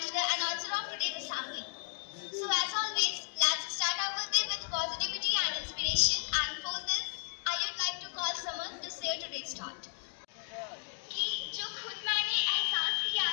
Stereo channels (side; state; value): right; silent; 55 dB below the other